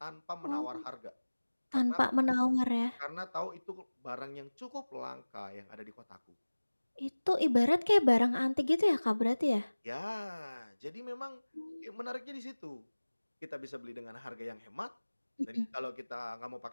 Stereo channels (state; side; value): inverted; both; correlation -1.00